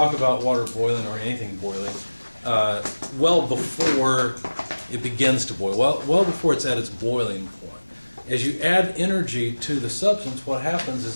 about water boiling or anything boiling well before it begins to boil, well before it's at its boiling point. As you add energy to the substance, what happens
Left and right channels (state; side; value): inverted; both; correlation -1.00